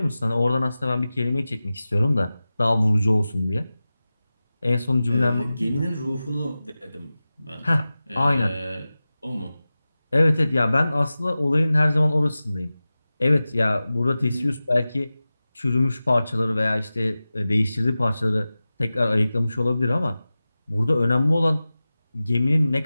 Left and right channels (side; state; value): both; inverted; correlation -0.96